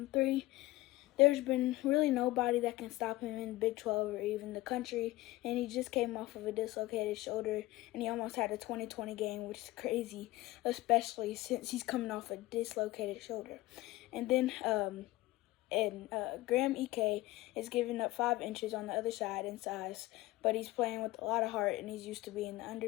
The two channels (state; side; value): quieter; right; 18.4 dB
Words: three. There's been really nobody that can stop him in Big 12 or even the country, and he just came off of a dislocated shoulder, and he almost had a 20-20 game, which is crazy, especially since he's coming off a dislocated shoulder. And then Graham Ike is giving up 5 inches on the other side in size, but he's playing with a lot of heart, and he's used to being the